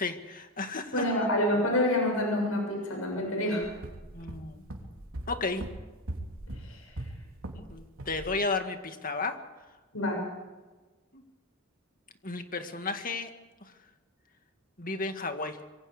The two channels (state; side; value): normal; both; correlation 0.11